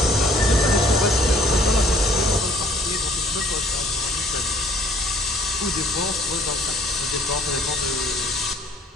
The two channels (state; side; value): normal; both; correlation 0.58